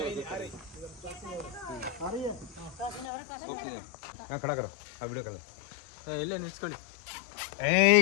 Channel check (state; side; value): drops out; right; at 3.1 s